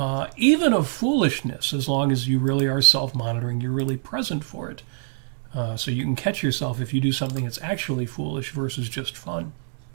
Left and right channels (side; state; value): left; silent; digital silence